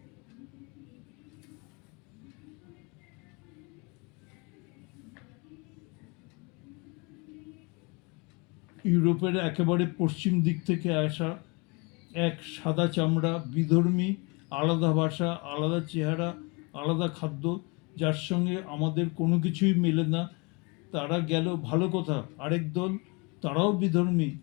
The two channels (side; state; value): right; quieter; 29.6 dB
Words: ইউরোপের একেবারে পশ্চিম দিক থেকে আসা এক সাদা চামড়া বিধর্মী, আলাদা ভাষা, আলাদা চেহারা, আলাদা খাদ্য, যার সঙ্গে আমাদের কোনো কিছুই মেলে না, তারা গেল ভালো কথা। আরেক দল, তারাও বিধর্মী,